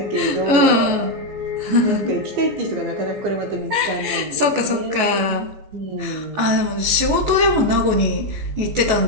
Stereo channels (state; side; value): late; left; 14 ms